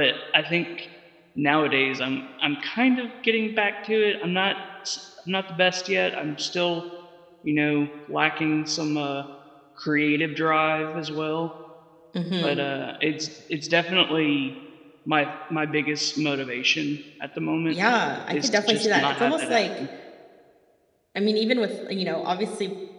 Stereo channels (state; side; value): identical; both; correlation 1.00